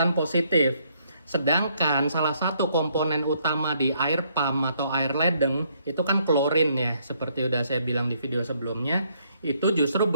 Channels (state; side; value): inverted; both; correlation -0.70